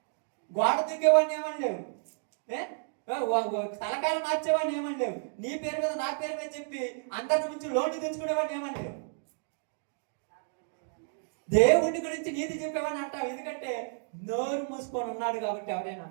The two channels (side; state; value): left; silent; digital silence